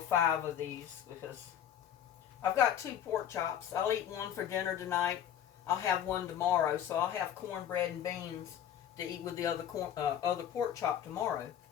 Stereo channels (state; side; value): quieter; right; 10.0 dB